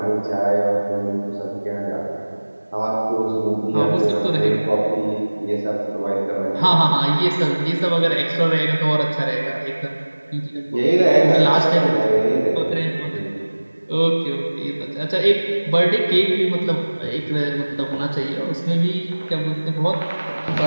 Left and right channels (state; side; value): inverted; both; correlation -1.00